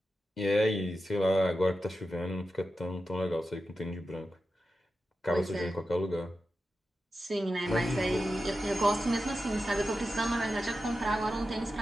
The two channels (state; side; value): normal; both; correlation 0.91